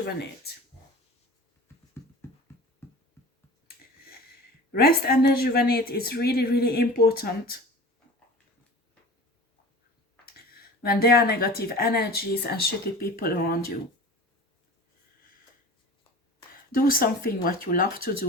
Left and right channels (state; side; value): normal; both; correlation 0.38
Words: Rest and rejuvenate is really, really important when there are negative energies and shitty people around you. Do something what you love to